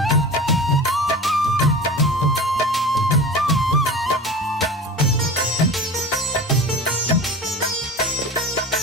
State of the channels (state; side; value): normal; both; correlation 0.34